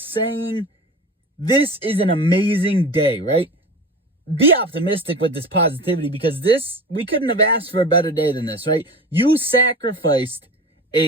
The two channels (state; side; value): normal; both; correlation 0.33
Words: this is an amazing day, right? Be optimistic with this positivity because we couldn't have asked for a better day than this, right? You sacrificed